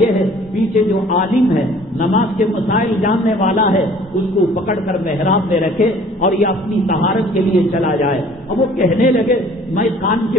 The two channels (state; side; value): normal; both; correlation 0.53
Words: ہے پیچھے جو عالم ہے، نماز کے مسائل جاننے والا ہے، اس کو پکڑ کر محراب میں رکھے اور یہ اپنی طہارت کے لیے چلا جائے. اب وہ کہنے لگے میں خان